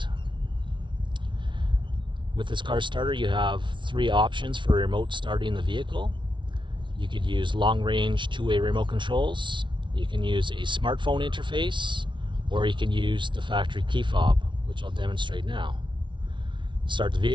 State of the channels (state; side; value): late; left; 0.24 ms